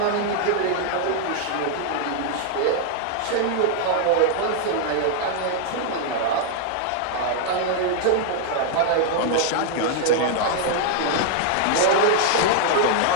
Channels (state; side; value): different; both; correlation -0.01